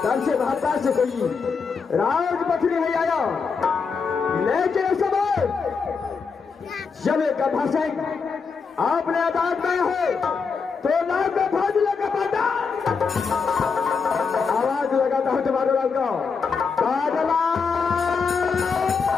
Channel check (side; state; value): right; quieter; 5.3 dB